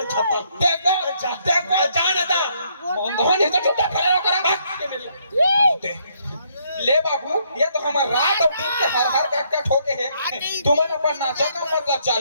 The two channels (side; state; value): both; inverted; correlation -0.70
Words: छपा देखो जाना था धोनी तो छुट्टा खड़ा करा ले बाबू ये तो हमारा रात और दिन के हर काट ठोके है तुमने अपन नाचा का मतलब